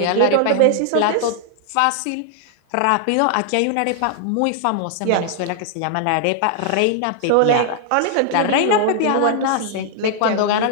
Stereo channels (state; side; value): different; both; correlation 0.00